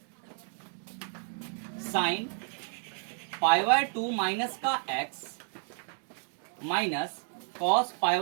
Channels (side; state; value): left; silent; 57 dB below the other